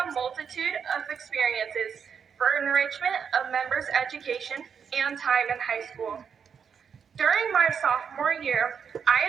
a multitude of experiences for enrichment of members' education and time in high school. During my sophomore year,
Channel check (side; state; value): left; quieter; 6.9 dB